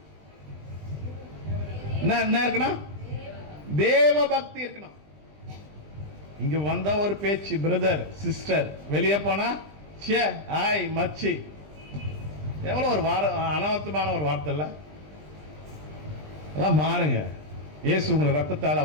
என்ன இருக்கணும்? தேவ பக்தி இருக்கணும். இங்க வந்த ஒரு பேச்சு, பிரதர் சிஸ்டர், வெளியே போனா சே ஆய் மச்சி, எவ்வளவு ஒரு அனவர்த்தமான ஒரு வார்த்தை இல்ல? எல்லாம் மாறுங்க. இயேசு உங்களை ரத்தத்தால்,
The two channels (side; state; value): left; late; 20 ms